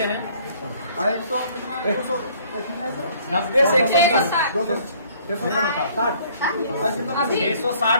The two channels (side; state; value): both; inverted; correlation -0.58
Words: हैं। 90 से